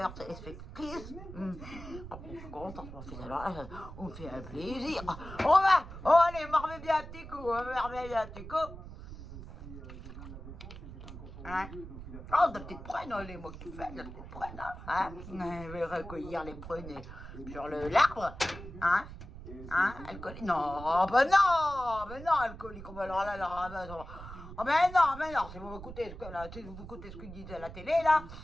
téléspectatrices. Je suis contente, mon fils. Alors là, on me fait un plaisir. Allez, marmez bien un petit coup, Hein? Oh, de petites prunes, les mots que tu fais, de petites prunes, hein? Je vais recueillir les prunes sur l'arbre, hein? Alcoolique? Non, ben non, alcoolique, alors là, oh ben non, si vous écoutez ce qu'ils disent à la télé, là,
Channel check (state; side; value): noise; right; rumble, 12 dB below the sound